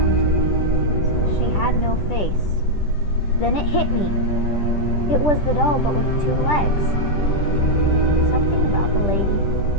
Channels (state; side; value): late; right; 10 ms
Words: to me. She had no face. Then it hit me. It was the doll, but with 2 legs. Something about the lady,